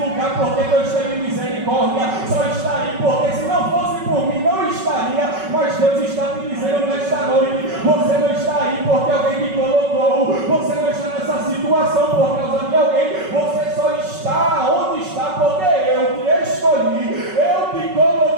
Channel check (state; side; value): late; left; 5.3 ms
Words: porque Deus teve misericórdia, só está aí porque se não fosse por mim não estaria. Mas Deus está te dizendo nesta noite: você não está aí porque alguém te colocou, você não está nessa situação por causa de alguém, você só está onde está porque eu te escolhi, eu te